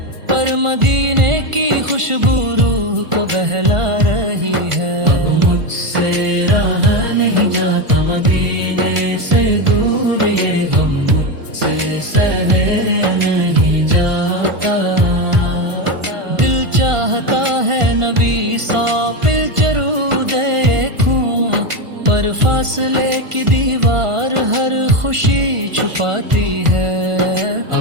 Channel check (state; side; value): late; left; 1.5 ms